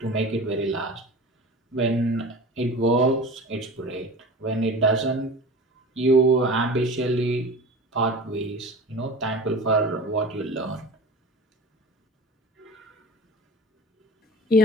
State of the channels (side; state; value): both; normal; correlation 0.36